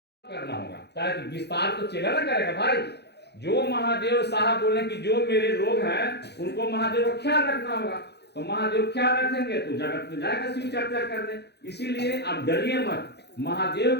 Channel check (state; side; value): late; right; 0.48 ms